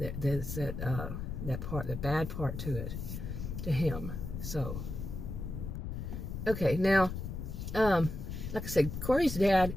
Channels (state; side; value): noise; left; rumble, 6 dB below the sound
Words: part, the bad part to it, to him. So, okay, now, like I said, Corey's dad,